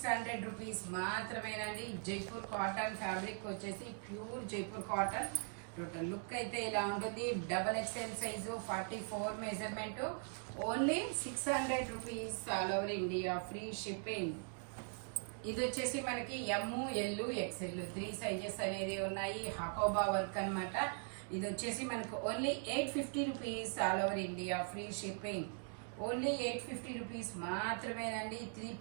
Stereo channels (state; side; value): silent; left; 51 dB below the other